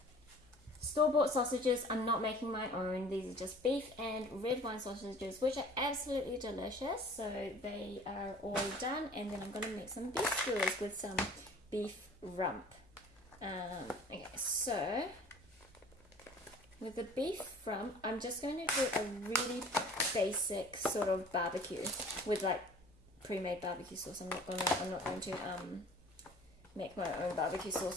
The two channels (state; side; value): noise; left; hum, 27 dB below the sound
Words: store-bought sausages. I'm not making my own. These are just beef and red wine sausages, which are absolutely delicious. So they are all done, and then I'm going to make some beef skewers with some beef rump. Okay, so with the beef rump, I'm just going to do a really basic sort of barbecue with like pre-made barbecue sauce. I'm not going to make my own barbecue